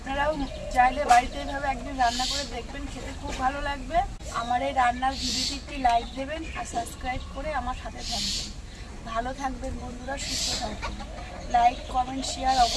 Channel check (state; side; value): identical; both; correlation 1.00